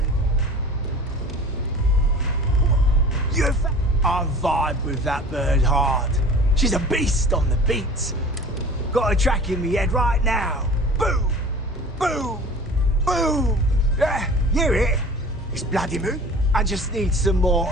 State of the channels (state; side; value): normal; both; correlation 0.42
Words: vibe with that bird hard. She's a beast on the beats. Got a track in me head right now. Boom! Boom! Boom! Yeah, hear it? It's bloody moon. I just need some more